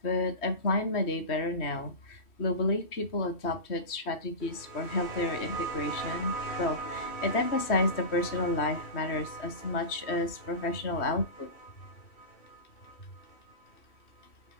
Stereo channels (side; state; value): right; late; 3.1 ms